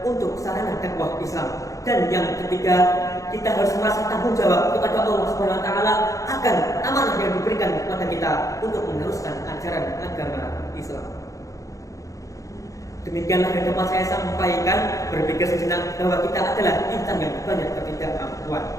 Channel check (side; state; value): right; late; 0.16 ms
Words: untuk sarana dakwah Islam. Dan yang ketiga, kita harus merasa tanggung jawab kepada Allah Subhanahu wa taala akan amanah yang diberikan kepada kita untuk meneruskan ajaran agama Islam. Demikianlah yang dapat saya sampaikan. Berpikir sejenak bahwa kita adalah insan yang banyak